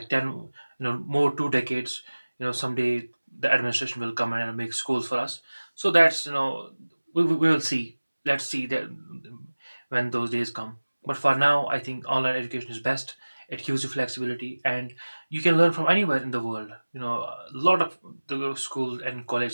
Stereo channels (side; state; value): both; inverted; correlation -1.00